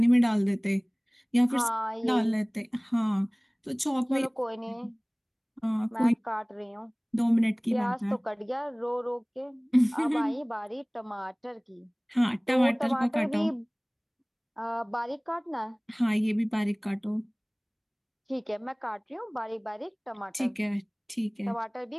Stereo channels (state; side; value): identical; both; correlation 1.00